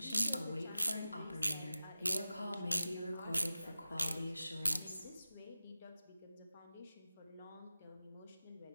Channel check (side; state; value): both; inverted; correlation -0.94